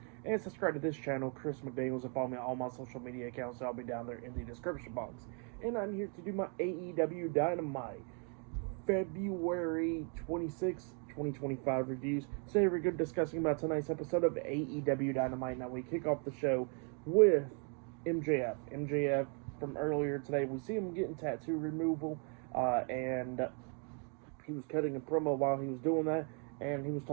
and subscribe to this channel, Chris McDaniels, and follow me on all my social media accounts. I'll be down there in the description box. And I'm here to do my AEW Dynamite February 26, 2025 reviews. So here we're going to be discussing about tonight's episode of AEW Dynamite. Now we kick off the show with MJF. MJF from earlier today, we see him getting tattoo removal, and he was cutting a promo while he was doing that, and he was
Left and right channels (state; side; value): quieter; left; 39.5 dB